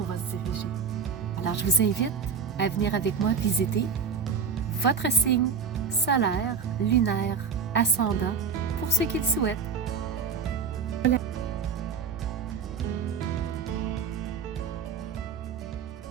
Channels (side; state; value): left; quieter; 6.0 dB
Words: va se diriger. Alors, je vous invite à venir avec moi visiter votre signe solaire, lunaire, ascendant, pour ceux qui le souhaitent. Voilà.